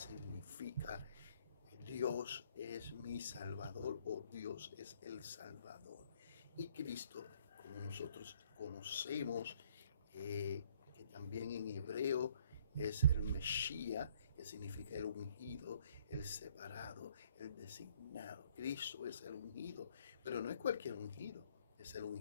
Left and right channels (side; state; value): both; inverted; correlation -0.63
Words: Dios es mi Salvador, o Dios es el Salvador. Y Cristo, como nosotros conocemos, que también en hebreo es el Mesías, que significa el ungido, el separado, el designado. Cristo es el ungido, pero no es cualquier ungido, es el